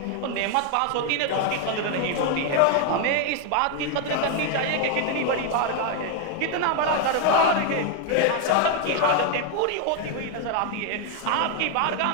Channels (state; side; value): different; both; correlation 0.01